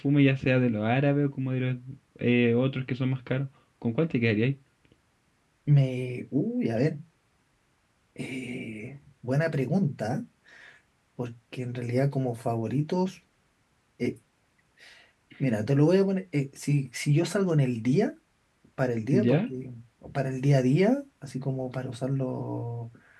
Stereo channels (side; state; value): both; identical; correlation 1.00